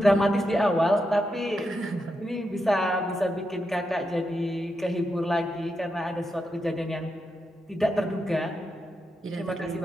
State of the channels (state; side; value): normal; both; correlation 0.85